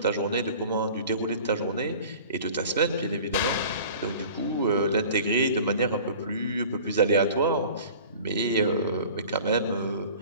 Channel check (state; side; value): inverted; both; correlation -0.43